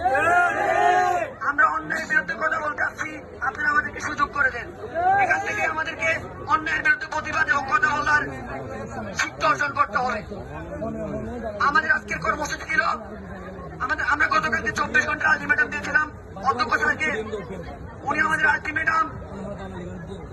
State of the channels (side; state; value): both; identical; correlation 1.00